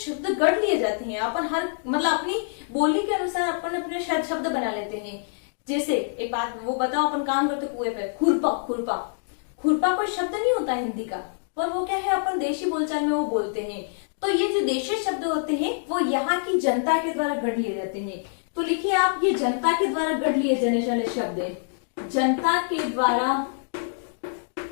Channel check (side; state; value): right; silent; digital silence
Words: गढ़ लिए जाते हैं। अपन हर मतलब अपनी बोली के अनुसार अपन अपने शब्द बना लेते हैं। जैसे एक बात वो बताओ, अपन काम करते कुएं पे, खुरपा, खुरपा, खुरपा कोई शब्द नहीं होता हिंदी का, पर वो क्या है अपन देशी बोलचाल में वो बोलते हैं। तो ये जो देशी शब्द होते हैं वो यहाँ की जनता के द्वारा गढ़ लिए जाते हैं। तो लिखिए आप, ये जनता के द्वारा गढ़ लिए जाने वाले शब्द है। जनता के द्वारा,